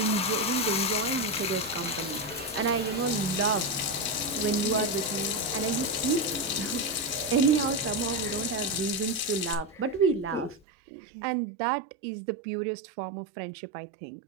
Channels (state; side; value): drops out; left; at 10.6 s